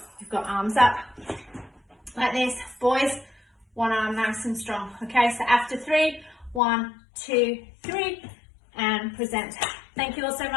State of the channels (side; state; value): right; drops out; at 6.6 s